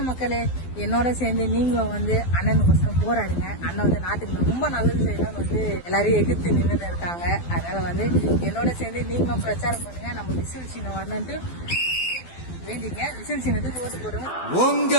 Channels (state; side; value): late; right; 12 ms